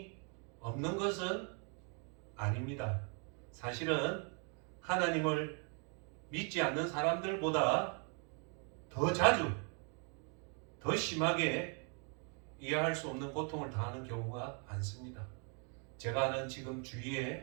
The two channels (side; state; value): left; quieter; 38.0 dB